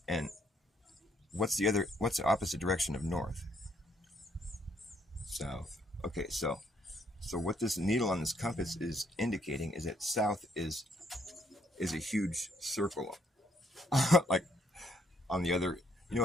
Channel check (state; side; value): normal; both; correlation 0.70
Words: And what's the opposite direction of north? South. Okay, so what this needle on this compass is indicating is that south is a huge circle, like on the other, you know